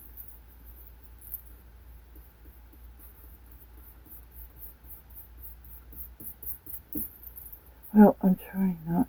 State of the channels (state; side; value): identical; both; correlation 1.00